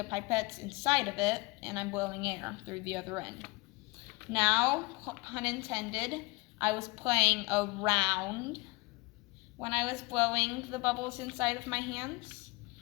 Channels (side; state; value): right; quieter; 25.4 dB